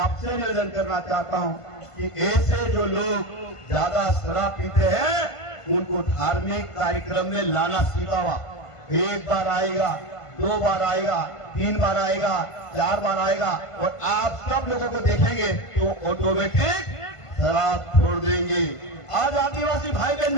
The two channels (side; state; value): right; late; 1.5 ms